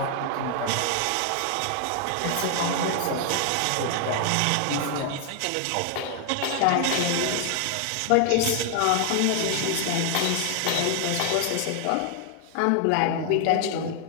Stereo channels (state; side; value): different; both; correlation 0.00